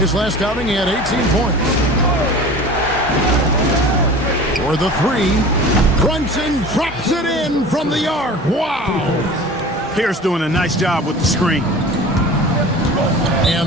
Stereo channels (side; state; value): both; normal; correlation 0.39